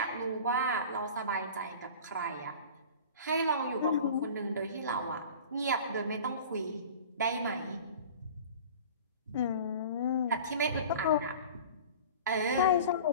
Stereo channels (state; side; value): inverted; both; correlation -0.39